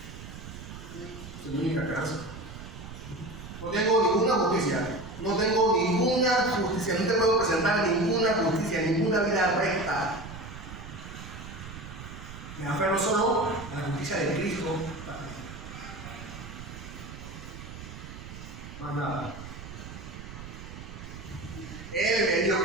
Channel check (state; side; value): noise; right; rumble, 12 dB below the sound